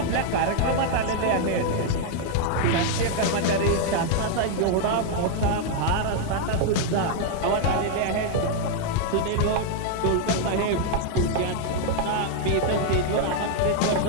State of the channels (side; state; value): both; different; correlation 0.00